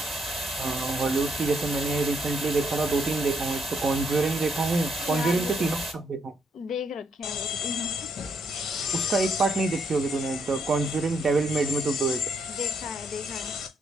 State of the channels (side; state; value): both; normal; correlation 0.75